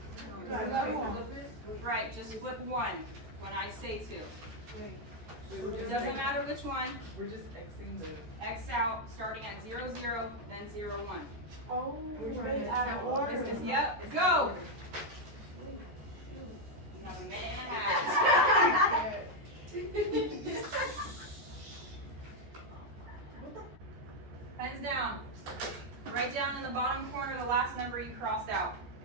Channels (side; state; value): left; late; 14 ms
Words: Right, just flip one when I say to. Wait, It doesn't matter which one. we're just Xing the. X out, starting at 0, 0, then 0, 1. Oh, We're trying right to out of count. order. Yep, go! You have a minute and a half. Pens down. Write down in the bottom corner the last number you crossed out.